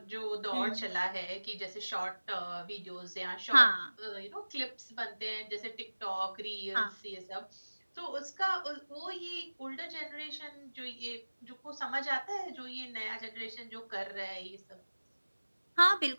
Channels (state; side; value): inverted; both; correlation -1.00